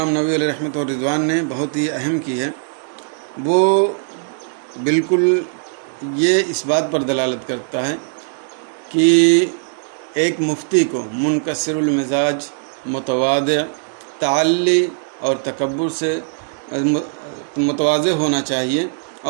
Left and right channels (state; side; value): silent; left; digital silence